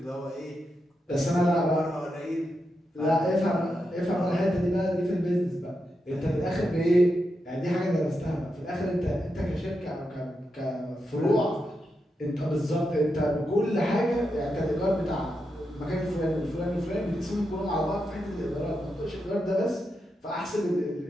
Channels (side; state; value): both; normal; correlation 0.86